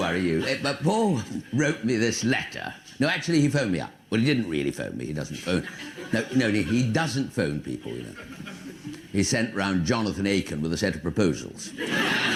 you. But Paul wrote me this letter. No, actually, he phoned me up. Well, he didn't really phone me. He doesn't phone. No, he doesn't phone people, you know. He sent round Jonathan Aiken with a set of proposals. And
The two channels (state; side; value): identical; both; correlation 1.00